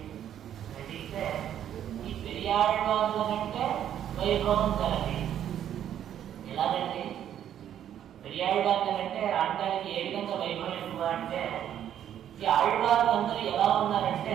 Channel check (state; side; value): quieter; left; 10.3 dB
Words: అంటే ఈ పెరియాళ్వార్ల కంటే వైభవం కలది. ఎలాగండి? పెరియాళ్వార్ల కంటే ఆండాళ్ళకి ఏ విధంగా వైభవం ఎక్కువ అంటే ఈ ఆళ్వార్లందరూ ఎలా